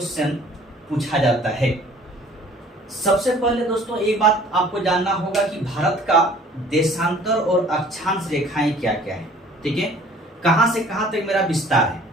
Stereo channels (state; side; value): normal; both; correlation 0.52